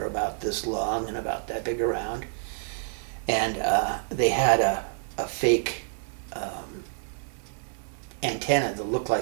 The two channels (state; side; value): silent; left; digital silence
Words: about this long and about that big around, and they had a fake antenna that looked